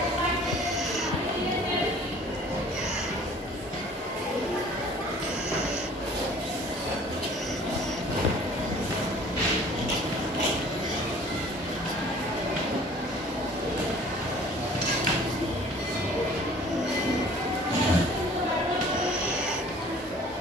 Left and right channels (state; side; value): normal; both; correlation 0.50